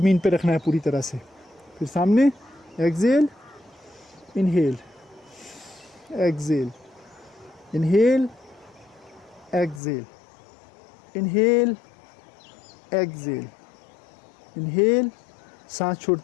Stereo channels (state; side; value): drops out; right; at 9.8 s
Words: पे रखना है पूरी तरह से। फिर सामने exhale, inhale, exhale, inhale, exhale, inhale, exhale, inhale, सांस